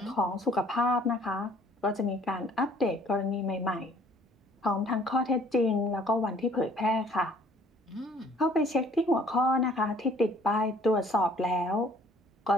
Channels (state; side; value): normal; both; correlation 0.56